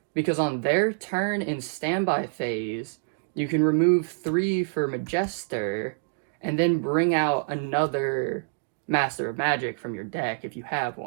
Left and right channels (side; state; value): left; silent; digital silence